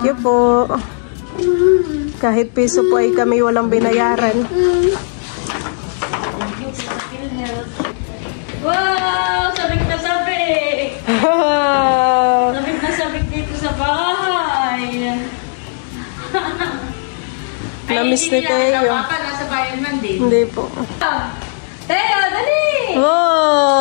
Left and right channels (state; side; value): silent; right; digital silence